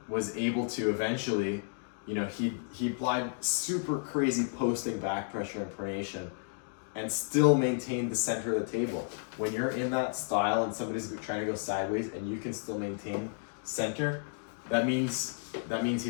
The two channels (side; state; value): right; silent; digital silence